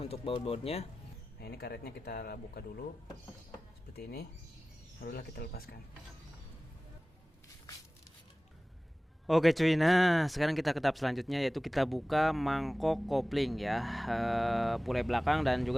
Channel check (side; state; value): both; normal; correlation 0.97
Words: baut-bautnya. Nah ini karetnya kita buka dulu seperti ini, barulah kita lepaskan. Oke cuy, nah sekarang kita ke tahap selanjutnya, yaitu kita buka mangkok kopling ya, puli belakang dan